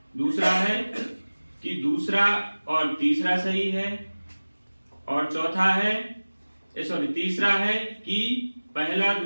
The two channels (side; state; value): both; inverted; correlation -1.00